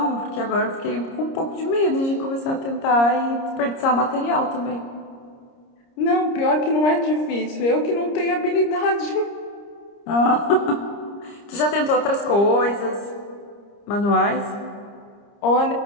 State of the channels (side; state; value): right; late; 30 ms